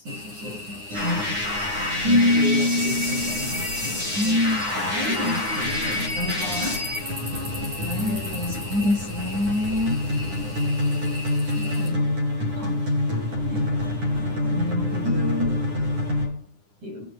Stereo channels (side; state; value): left; late; 9.8 ms